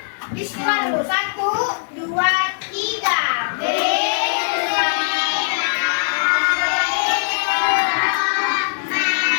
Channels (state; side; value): silent; right; digital silence